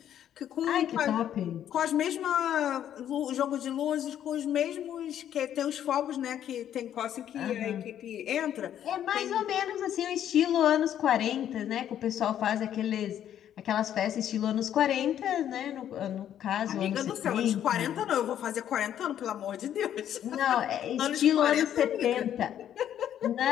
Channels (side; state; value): right; quieter; 10.4 dB